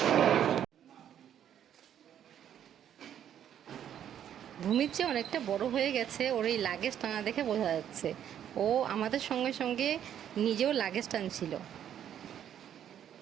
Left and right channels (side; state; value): left; quieter; 9.9 dB